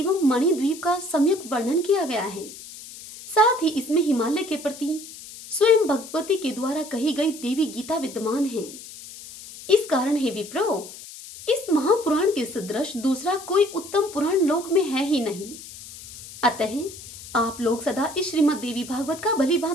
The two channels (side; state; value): left; noise; hiss, 15 dB below the sound